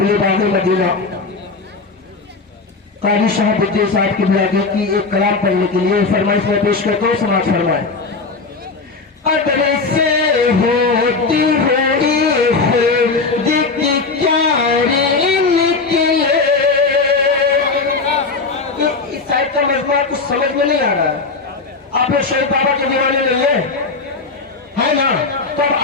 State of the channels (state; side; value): quieter; right; 4.1 dB